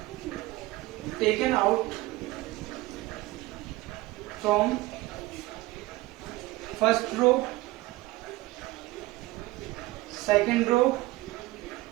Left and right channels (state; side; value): quieter; left; 19.2 dB